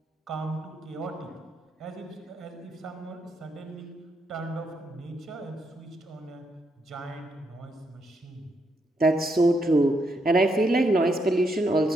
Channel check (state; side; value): normal; both; correlation 0.78